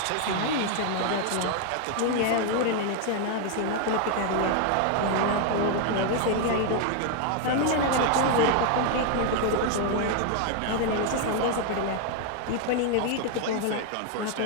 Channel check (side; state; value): both; different; correlation 0.00